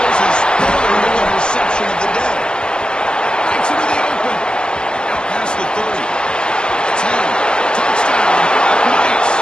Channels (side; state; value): right; late; 0.048 ms